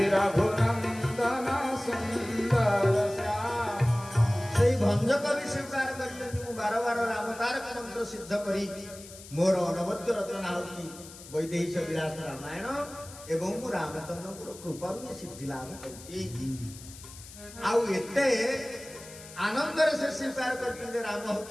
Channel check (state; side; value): noise; left; hiss, 17 dB below the sound